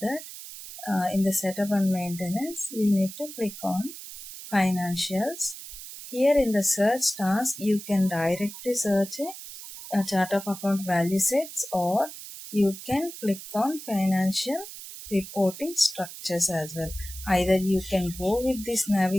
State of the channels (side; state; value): right; noise; hiss, 12 dB below the sound